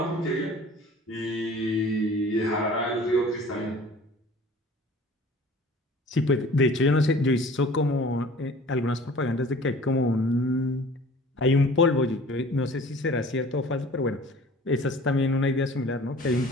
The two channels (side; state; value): both; normal; correlation 0.46